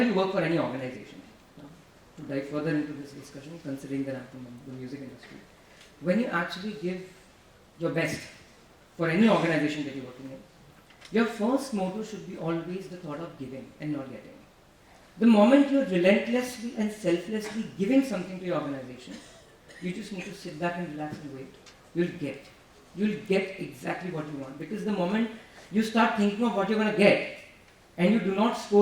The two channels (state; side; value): identical; both; correlation 1.00